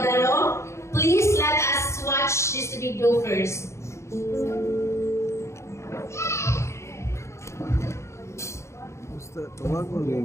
Please let us watch this video first. Tawag mo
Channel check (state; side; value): late; right; 0.14 ms